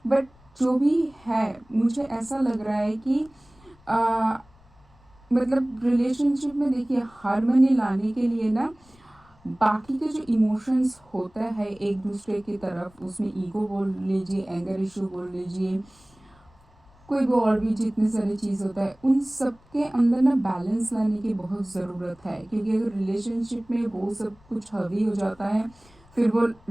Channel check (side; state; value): left; noise; rumble, 29 dB below the sound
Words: बट जो भी है मुझे ऐसा लग रहा है कि मतलब रिलेशनशिप में देखिए हार्मनी लाने के लिए ना बाकी के जो इमोशंस होता है एक दूसरे की तरफ, उसमें ईगो बोल लीजिए, एंगर इशू बोल लीजिए, कोई भी और भी जितने सारे चीज़ होता है, उन सब के अंदर ना बैलेंस लाने की बहुत ज़रूरत है। क्योंकि अगर रिलेशनशिप में वो सब कुछ हावी हो जाता है फिर वो